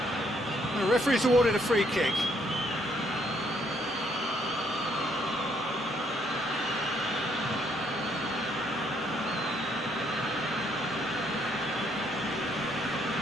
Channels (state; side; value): normal; both; correlation 0.70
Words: The referee's awarded a free kick.